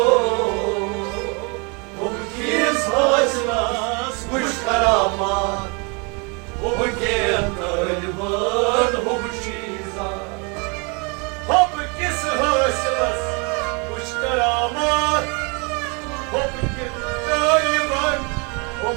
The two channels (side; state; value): left; quieter; 32.2 dB